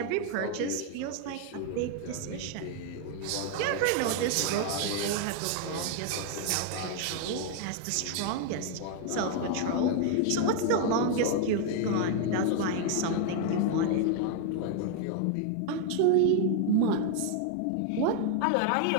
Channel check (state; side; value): different; both; correlation 0.00